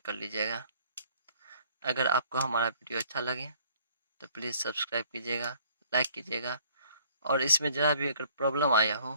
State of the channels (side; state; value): both; inverted; correlation -0.58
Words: लीजिएगा। अगर आपको हमारा वीडियो अच्छा लगे तो प्लीज़ सब्सक्राइब कीजिएगा, लाइक कीजिएगा और इसमें ज़रा भी अगर प्रॉब्लम आया